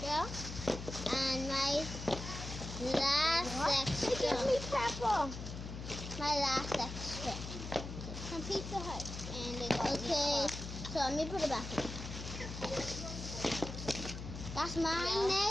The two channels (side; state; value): left; noise; hum, 8 dB below the sound